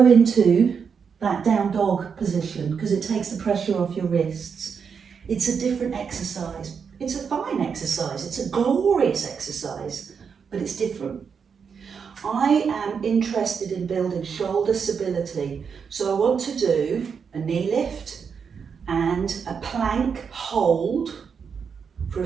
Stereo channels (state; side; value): quieter; left; 6.3 dB